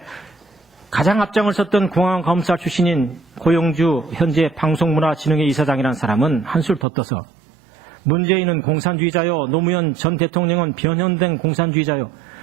가장 앞장을 섰던 공안검사 출신인 고영주 현재 방송문화진흥회 이사장이라는 사람은 한술 더 떠서 문재인은 공산주의자요, 노무현 전 대통령은 변형된 공산주의자요,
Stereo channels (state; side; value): drops out; left; at 6.9 s